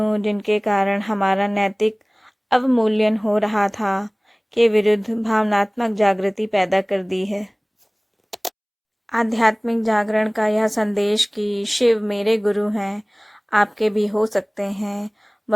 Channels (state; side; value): identical; both; correlation 1.00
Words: जिनके कारण हमारा नैतिक अवमूल्यन हो रहा था, के विरुद्ध भावनात्मक जागृति पैदा कर दी है। आध्यात्मिक जागरण का यह संदेश कि शिव मेरे गुरु हैं, आपके भी हो सकते हैं,